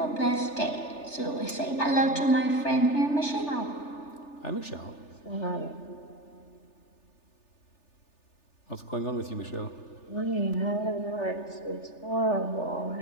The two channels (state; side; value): late; right; 3.4 ms